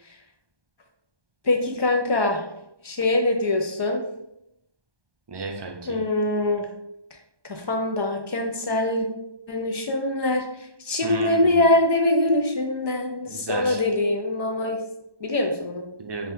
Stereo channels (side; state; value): left; late; 1.2 ms